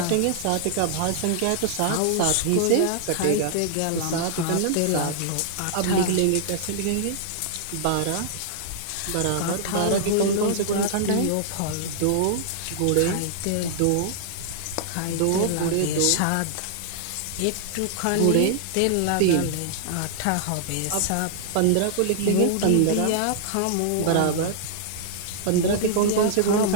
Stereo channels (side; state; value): both; different; correlation -0.01